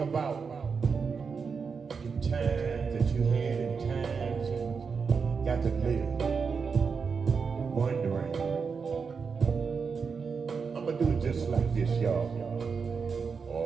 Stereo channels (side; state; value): left; quieter; 5.5 dB